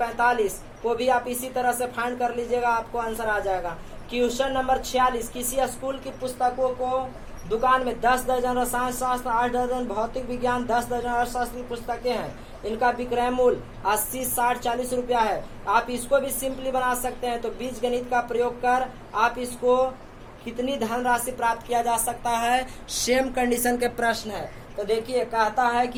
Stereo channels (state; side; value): identical; both; correlation 1.00